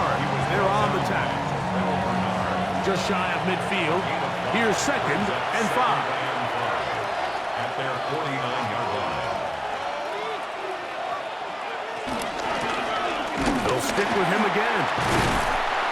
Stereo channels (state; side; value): identical; both; correlation 1.00